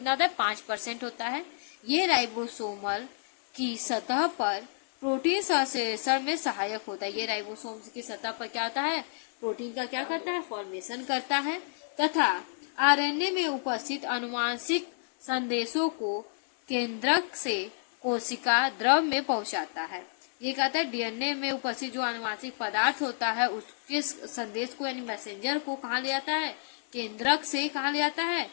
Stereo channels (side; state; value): right; silent; 58 dB below the other